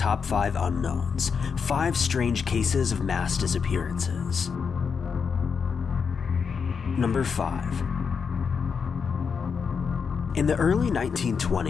5 Unknowns, 5 strange cases of mass disappearances. Number 5. In the early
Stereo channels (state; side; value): quieter; right; 6.0 dB